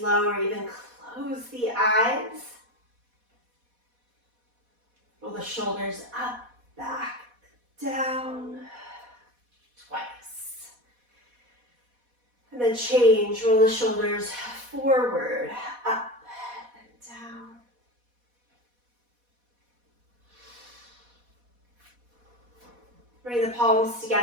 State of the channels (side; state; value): left; late; 4.1 ms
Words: or even close the eyes. Roll the shoulders up, back, down, twice. And then change, roll the shoulders forward, up, and down. Bring the palms